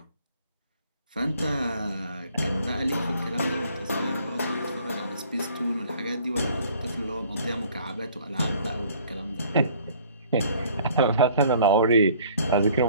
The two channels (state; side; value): inverted; both; correlation -0.56